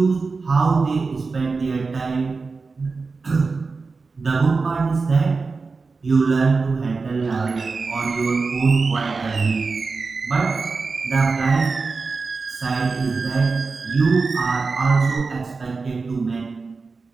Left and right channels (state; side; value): quieter; left; 4.3 dB